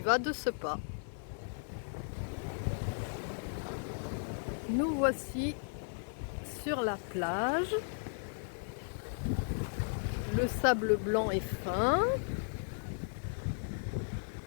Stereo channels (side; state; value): right; silent; 54 dB below the other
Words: va de ce pas. Nous voici sur la plage. Le sable blanc est fin.